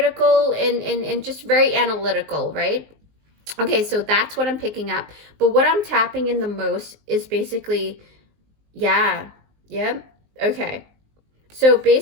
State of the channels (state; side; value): late; left; 19 ms